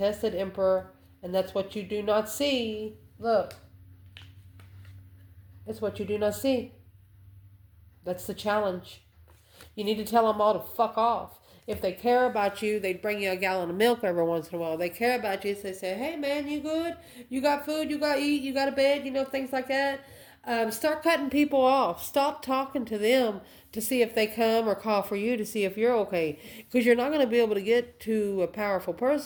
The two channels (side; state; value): both; identical; correlation 1.00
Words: Emperor. And that's what you do not see. Look. It's what you do not see. That's the challenge. You need to tell them all to fuck off. If they care about you, they'd bring you a gallon of milk every once in a while. They care about you, so they say, hey man, you good? You got food? You got to eat? You got a bed? Things like that. Start cutting people off. Stop talking to them to see if they come or call for you to see if you're okay. Because you're not going to be able to get to a powerful